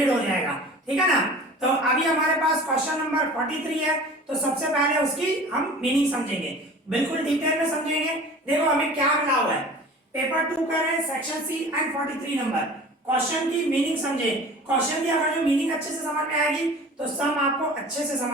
हो जाएगा, ठीक है ना। तो अभी हमारे पास क्वेश्चन नंबर 43 है, तो सबसे पहले उसकी हम मीनिंग समझेंगे, बिल्कुल डिटेल में समझेंगे। देखो हमें क्या मिला हुआ है, पेपर 2 कर रहे हैं, section C and 43 number. Question की मीनिंग समझे, क्वेश्चन की अगर जो मीनिंग अच्छे से समझ में आएगी तो सम आपको अच्छे से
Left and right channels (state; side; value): normal; both; correlation 0.41